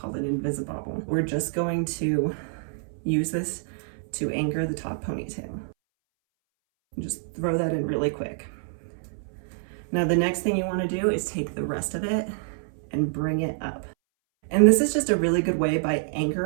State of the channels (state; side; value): silent; left; 60 dB below the other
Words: an invisibobble. We're just going to use this to anchor the top ponytail. Just throw that in really quick. Now the next thing you wanna do is take the rest of it and bring it up. And this is just a really good way by